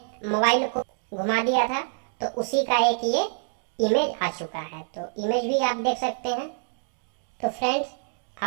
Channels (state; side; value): silent; left; 58 dB below the other